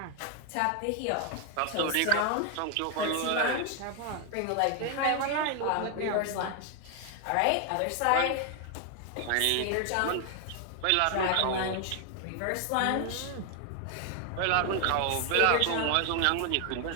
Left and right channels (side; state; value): both; different; correlation 0.00